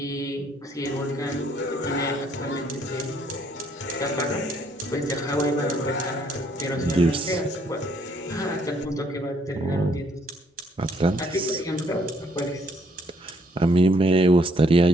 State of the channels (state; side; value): normal; both; correlation 0.67